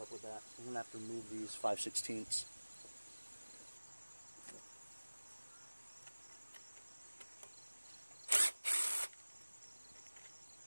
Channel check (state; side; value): inverted; both; correlation -1.00